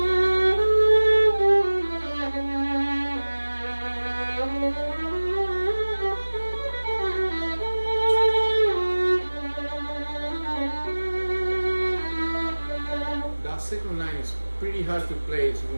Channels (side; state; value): both; inverted; correlation -1.00